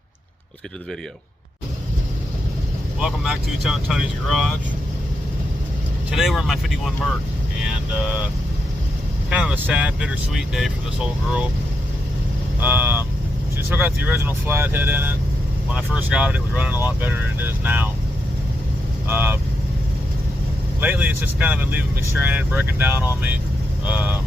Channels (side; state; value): both; normal; correlation 0.83